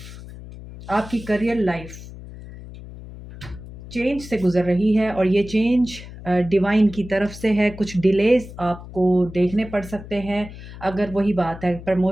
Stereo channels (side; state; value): left; noise; hum, 14 dB below the sound